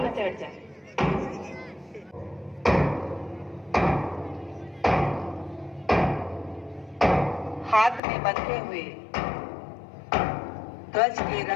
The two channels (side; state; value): right; drops out; at 8.0 s